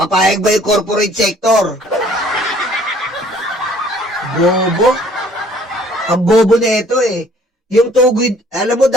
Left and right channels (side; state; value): both; normal; correlation 0.57